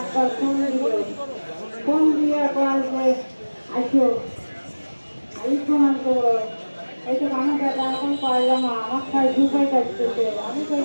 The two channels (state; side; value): inverted; both; correlation -1.00